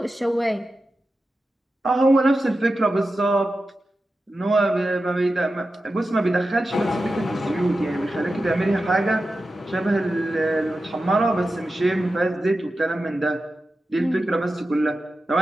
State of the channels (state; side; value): normal; both; correlation 0.92